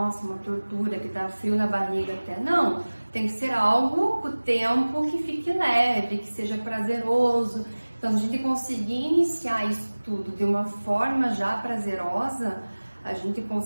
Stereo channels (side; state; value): both; inverted; correlation -1.00